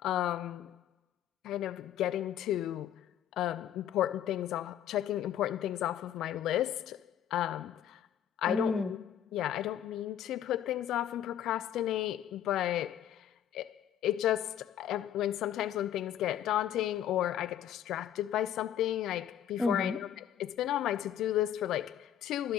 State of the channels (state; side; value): quieter; right; 10.5 dB